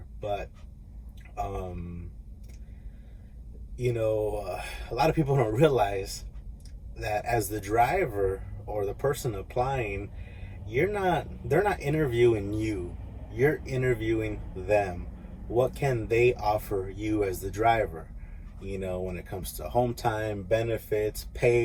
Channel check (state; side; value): identical; both; correlation 1.00